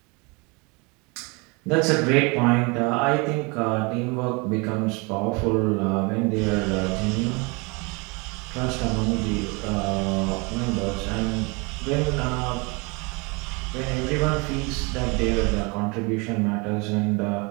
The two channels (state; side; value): quieter; left; 28.9 dB